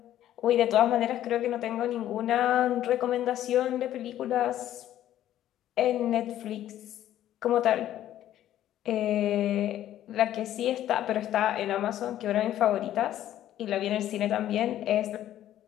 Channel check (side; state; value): right; quieter; 12.3 dB